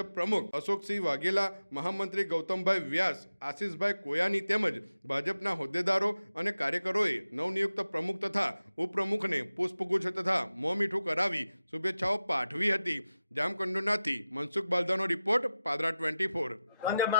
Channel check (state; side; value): inverted; both; correlation -0.93